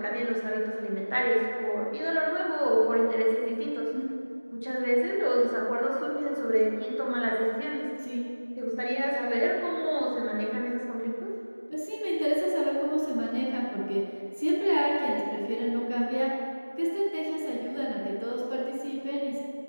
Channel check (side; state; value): both; inverted; correlation -1.00